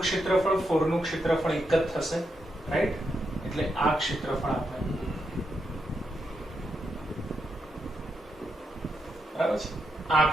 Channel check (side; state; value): both; normal; correlation 0.83